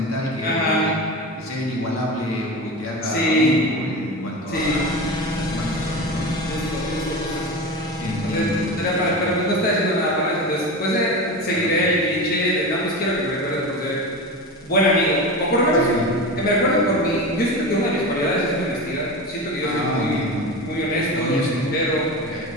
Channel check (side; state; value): both; normal; correlation 0.26